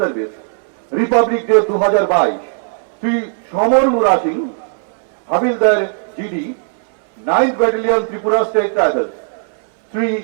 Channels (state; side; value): silent; left; digital silence